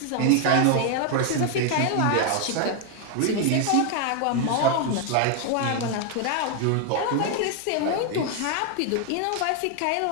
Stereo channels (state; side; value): different; both; correlation 0.01